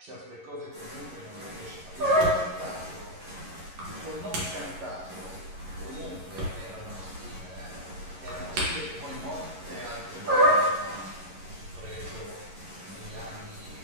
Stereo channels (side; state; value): left; late; 11 ms